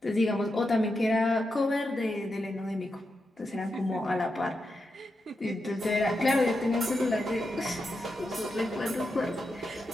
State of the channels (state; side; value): normal; both; correlation 0.87